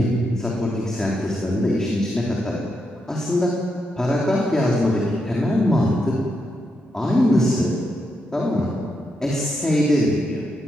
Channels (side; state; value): both; normal; correlation 0.83